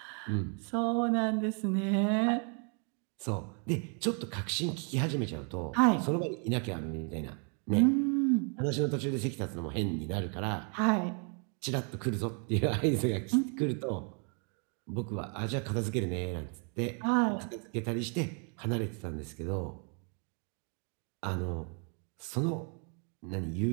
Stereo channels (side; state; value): left; quieter; 39.3 dB